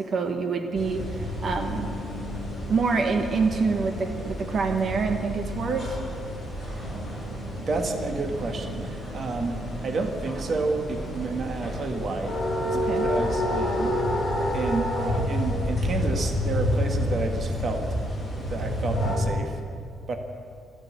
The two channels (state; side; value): normal; both; correlation 0.75